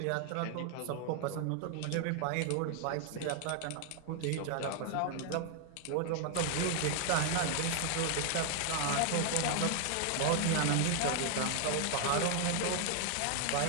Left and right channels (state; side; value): different; both; correlation 0.00